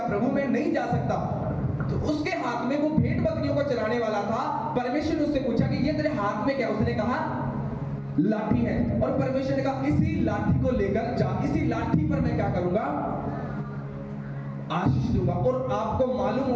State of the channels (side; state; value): both; identical; correlation 1.00